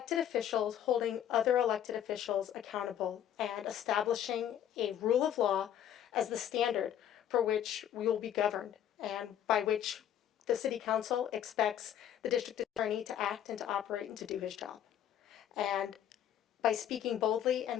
officials holding other elected officials accountable and establishing a rule of law as the standard for which we will be governed, and by which the city council expects the district attorney to act and to operate and to do his job. And by speaking boldly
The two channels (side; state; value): right; quieter; 10.3 dB